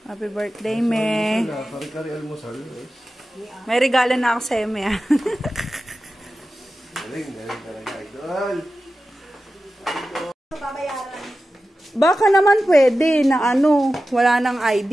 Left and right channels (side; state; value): both; normal; correlation 0.94